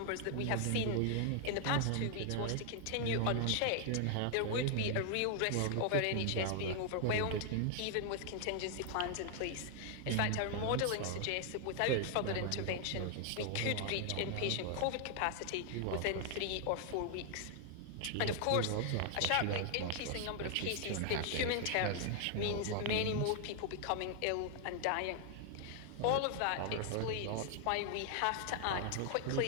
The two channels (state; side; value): different; both; correlation 0.00